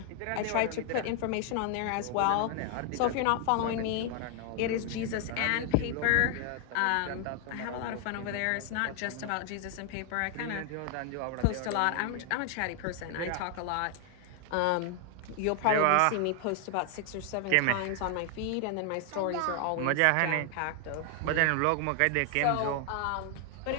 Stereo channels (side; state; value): both; different; correlation 0.00